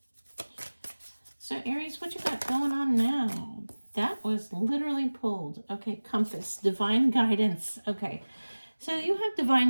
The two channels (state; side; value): inverted; both; correlation -1.00